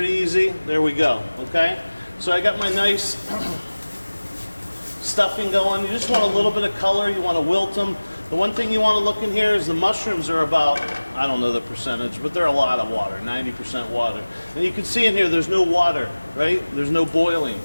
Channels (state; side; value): inverted; both; correlation -1.00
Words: easy. There we go. Okay. So I got my nice stuffing going. You just want a little bit of color. You want to wilt them. The one thing you want to look in here is the mushrooms are about, I don't know the percentage, but they're a lot of water, 90% water. And you can see in here there's no water, right? There's no boiling.